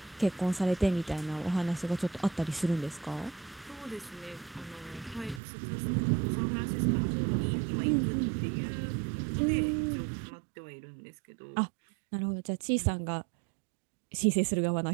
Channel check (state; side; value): drops out; left; at 5.4 s